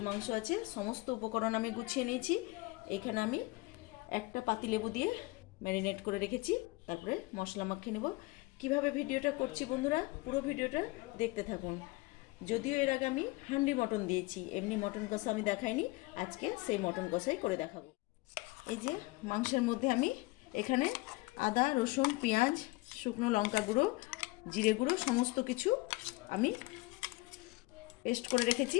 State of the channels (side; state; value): right; quieter; 22.7 dB